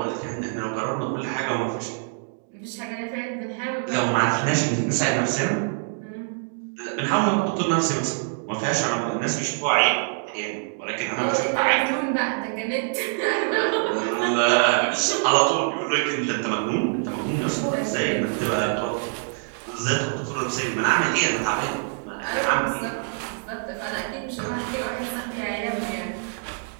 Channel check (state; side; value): silent; left; 60 dB below the other